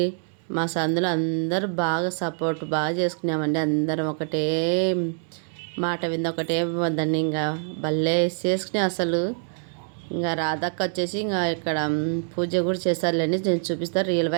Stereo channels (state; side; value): silent; left; 58 dB below the other